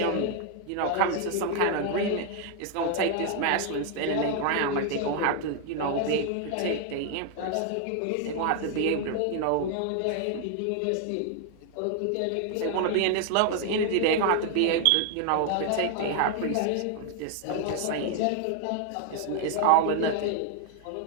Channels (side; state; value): both; different; correlation 0.00